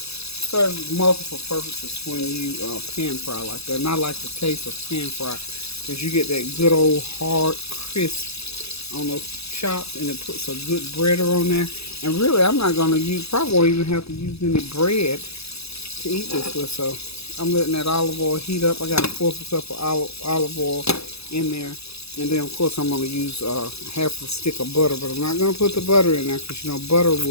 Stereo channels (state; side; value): late; right; 0.78 ms